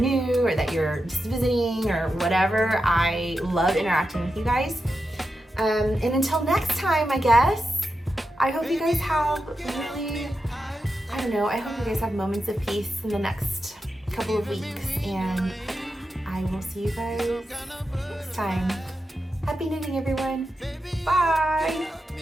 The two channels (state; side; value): normal; both; correlation 0.89